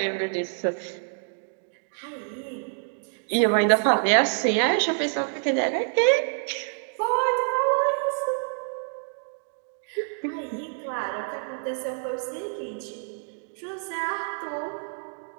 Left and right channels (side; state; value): left; silent; 60 dB below the other